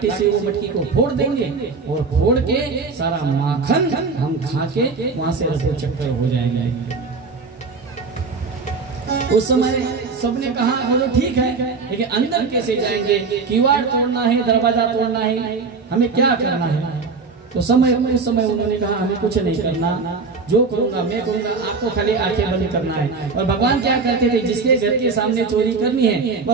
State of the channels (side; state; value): left; quieter; 4.5 dB